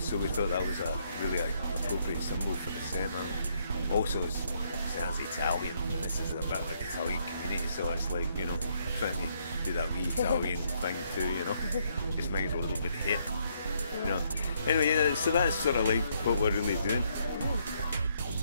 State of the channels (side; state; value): both; inverted; correlation -0.72